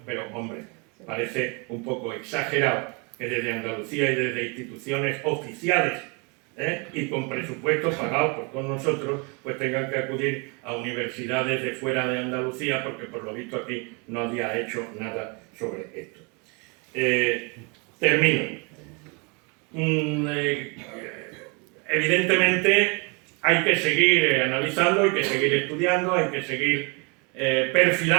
pero hombre, parece un poco exagerado que desde Andalucía y desde instituciones oficiales y con presupuestos pagados por todos nosotros, pues tengan que acudir a universidades de fuera de Andalucía, porque por lo visto aquí nadie ha hecho nada sobre esto. Termino. Evidentemente hay que seguir analizando, hay que seguir estudiando, hay que seguir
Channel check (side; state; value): left; quieter; 31.9 dB